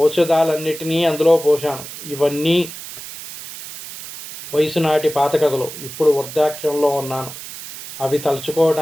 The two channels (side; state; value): right; noise; hiss, 12 dB below the sound